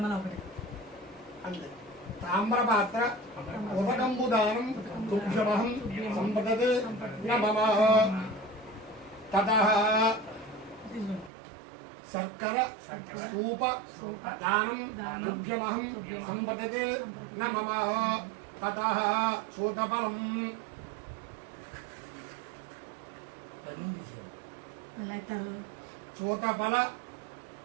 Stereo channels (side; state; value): left; drops out; at 11.3 s